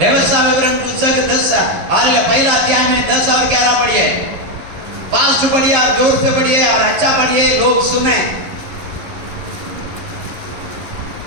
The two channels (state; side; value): late; left; 11 ms